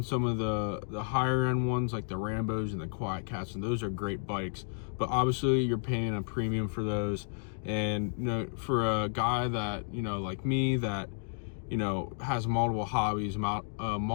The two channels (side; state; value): right; silent; digital silence